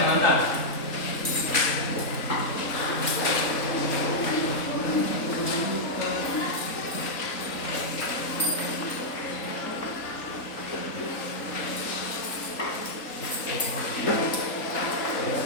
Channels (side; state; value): right; late; 3.8 ms